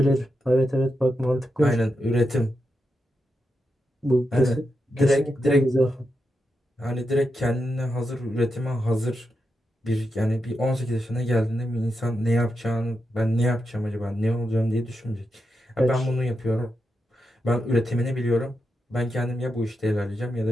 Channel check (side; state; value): both; normal; correlation 0.86